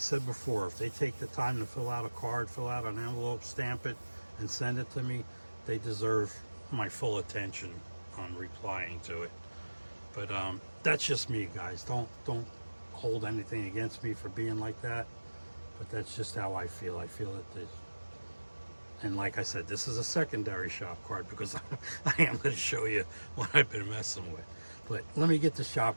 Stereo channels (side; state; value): both; inverted; correlation -1.00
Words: before, if they take the time to fill out a card, fill out an envelope, stamp it, and send it to me, they deserve my full attention on replying to it. But that's just me, guys. Don't hold anything against me for being like that. But that's just how I feel. I feel that this, and like I said, this is a secondary shop card because I am going to show you what I've been messing with. But let me get the